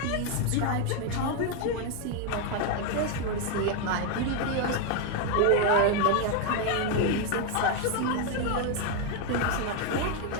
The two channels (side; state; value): both; different; correlation 0.01